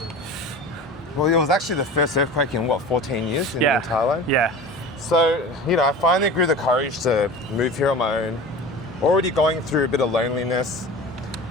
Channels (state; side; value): normal; both; correlation 0.35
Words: Well, it was actually the first earthquake in, 14 years in Thailand? Yeah. So, you know, I finally grew the courage to move here on my own, already going through a bit of loneliness.